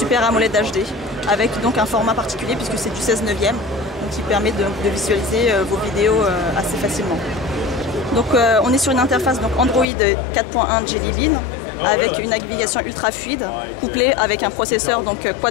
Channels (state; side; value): drops out; right; at 9.9 s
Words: AMOLED HD avec donc un format particulier puisque c'est du 16/9, donc qui permet de visualiser vos vidéos assez facilement. Donc on est sur une interface donc Android 4.1 Jelly Bean avec une navigation ultra fluide couplée avec un processeur donc